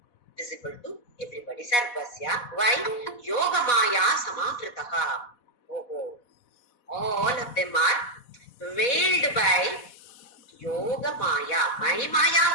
visible to everybody. Sarvasya. Why? Yogamaya samavritaka. Oh. All of them are veiled by Yoga Maya, my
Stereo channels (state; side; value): late; right; 4.1 ms